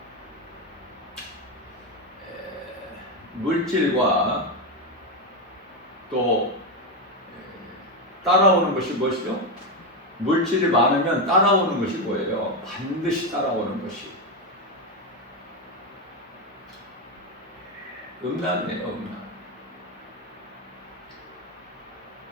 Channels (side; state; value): both; normal; correlation 0.09